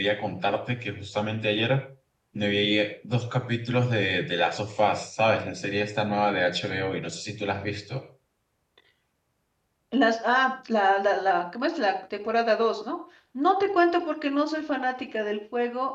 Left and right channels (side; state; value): both; identical; correlation 1.00